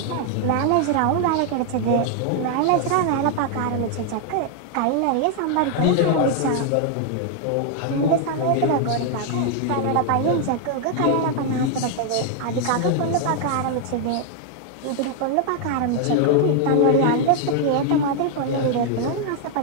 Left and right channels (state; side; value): different; both; correlation 0.00